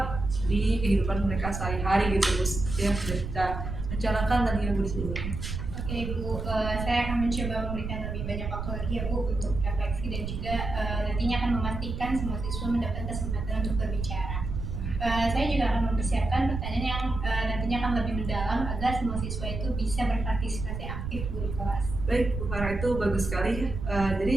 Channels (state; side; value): noise; right; rumble, 5 dB below the sound